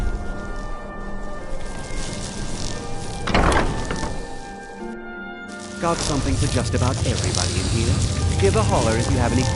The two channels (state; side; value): identical; both; correlation 1.00